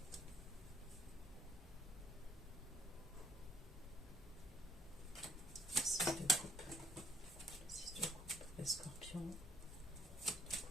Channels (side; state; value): both; normal; correlation 0.67